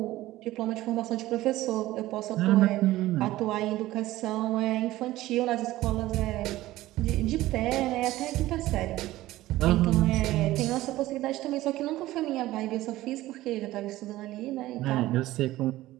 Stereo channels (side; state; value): left; quieter; 16.3 dB